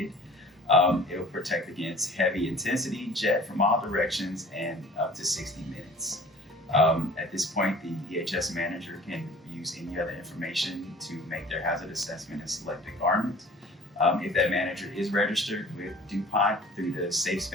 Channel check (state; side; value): normal; both; correlation 0.47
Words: It will protect against heavy intensity, jet from all directions, and up to 60 minutes. At this point, the EHS manager can use any other information to make their hazard assessment and select a garment. If that manager is registered with DuPont through the